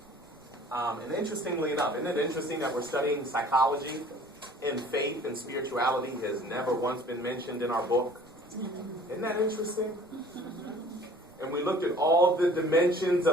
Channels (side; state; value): right; noise; rumble, 30 dB below the sound